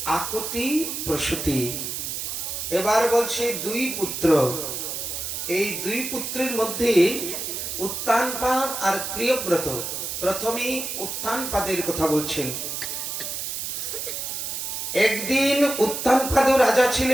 আকুতি, প্রসূতি। এবার বলছে দুই পুত্র। এই দুই পুত্রের মধ্যে উত্তানপাদ আর প্রিয়ব্রত। প্রথমে উত্তানপাদের কথা বলছেন। একদিন উত্তানপাদ রাজা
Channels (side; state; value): right; noise; hiss, 4 dB below the sound